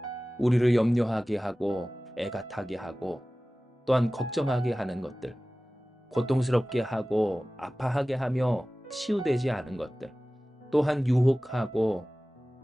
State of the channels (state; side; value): normal; both; correlation 0.97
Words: 우리를 염려하게 하고 애가 타게 하고 또한 걱정하게 하는 것들, 고통스럽게 하고 아파하게 하며 치유되지 않은 것들, 또한 유혹하고